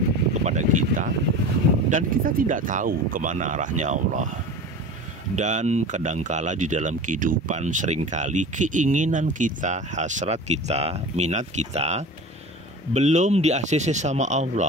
kepada kita dan kita tidak tahu kemana arahnya Allah. Dan kadangkala di dalam kehidupan seringkali keinginan kita, hasrat kita, minat kita belum di-ACC sama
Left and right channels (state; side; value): normal; both; correlation 0.34